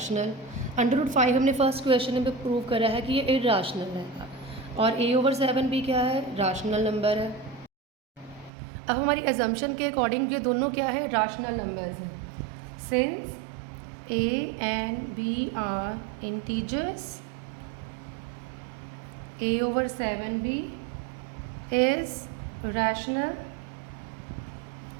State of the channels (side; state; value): left; drops out; at 8.5 s